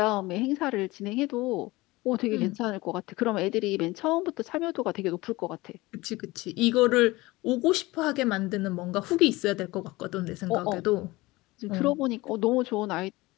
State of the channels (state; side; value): quieter; right; 20.8 dB